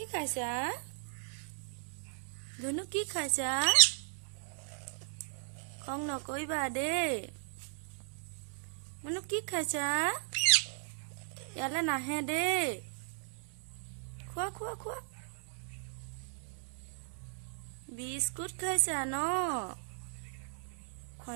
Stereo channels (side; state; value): left; silent; digital silence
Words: খাইছা ধুনু কি খাইছা খং নকইবা দেই menu কি খাইছা ইয়ালে নাহে দেই খোৱা খোৱা খোৱা বিস্কুট খাইছা ন